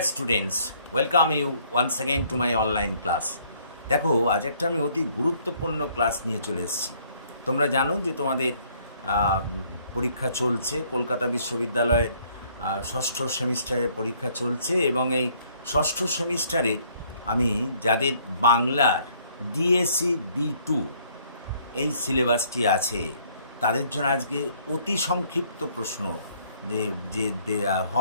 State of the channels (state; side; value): inverted; both; correlation -0.63